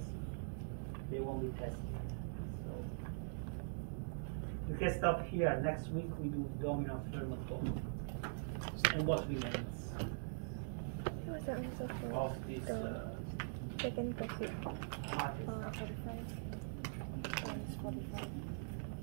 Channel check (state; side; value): silent; left; digital silence